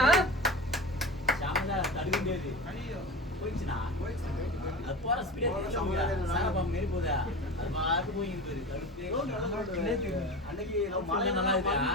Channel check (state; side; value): normal; both; correlation 0.29